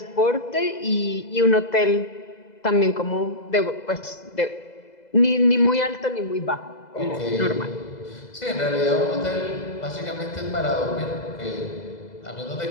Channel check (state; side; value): late; right; 2.0 ms